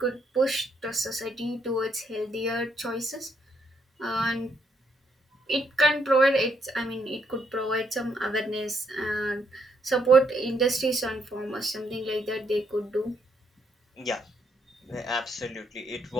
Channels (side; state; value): both; normal; correlation 0.74